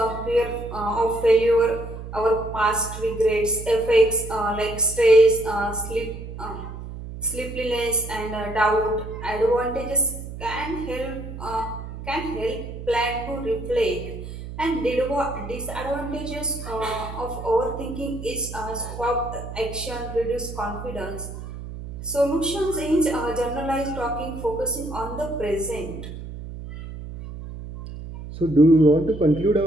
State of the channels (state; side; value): noise; right; hum, 10 dB below the sound